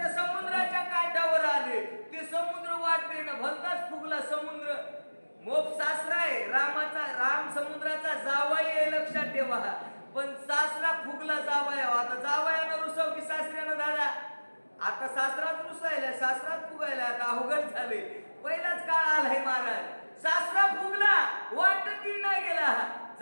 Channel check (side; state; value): both; inverted; correlation -1.00